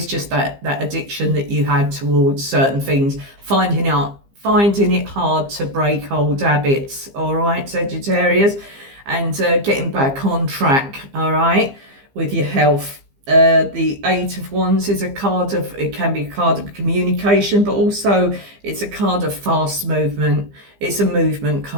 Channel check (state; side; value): late; left; 15 ms